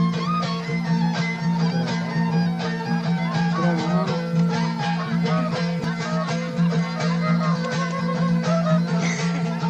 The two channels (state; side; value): identical; both; correlation 1.00